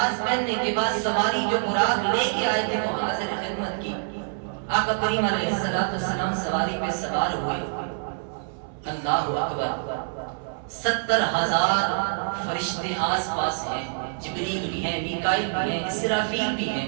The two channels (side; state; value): left; silent; 61 dB below the other